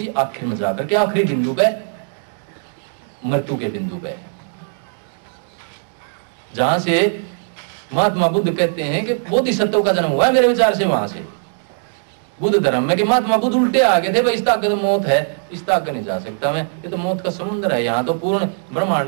आखिर में जाकर के आखिरी बिंदु पे, मृत्यु के बिंदु पे, जहां से महात्मा बुद्ध कहते हैं कि बोधिसत्व का जन्म हुआ है मेरे विचार से वहां से बुद्ध धर्म में, कि महात्मा बुद्ध उल्टे आ गए थे, भाई इस तक तो मौत है, इस तक नहीं जा सकता मैं, ये तो मौत का समुद्र है, यहाँ तो पूर्ण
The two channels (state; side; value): silent; left; digital silence